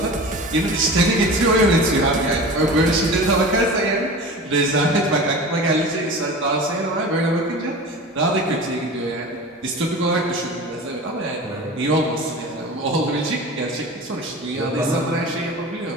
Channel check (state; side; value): normal; both; correlation 0.35